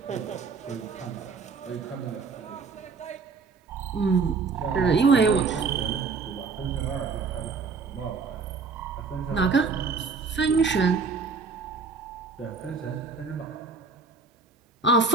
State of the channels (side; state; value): left; quieter; 4.6 dB